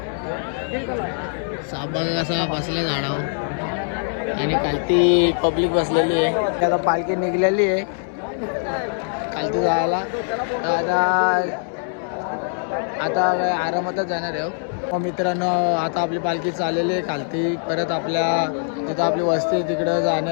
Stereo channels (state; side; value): silent; right; digital silence